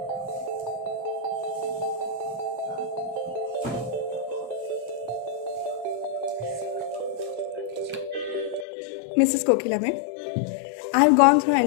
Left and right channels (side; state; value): right; drops out; at 8.7 s